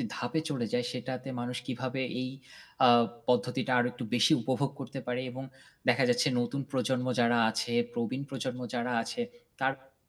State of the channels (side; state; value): both; identical; correlation 1.00